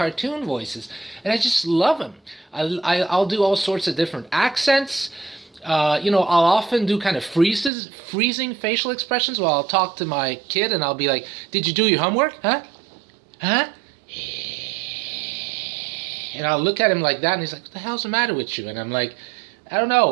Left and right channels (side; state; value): left; drops out; at 7.7 s